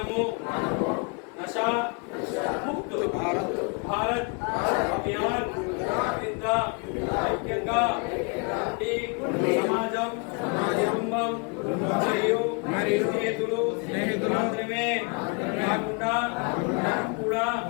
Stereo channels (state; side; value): quieter; right; 34.3 dB